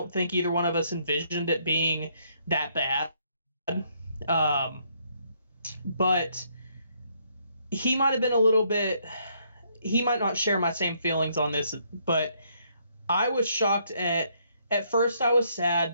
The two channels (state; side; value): inverted; both; correlation -0.71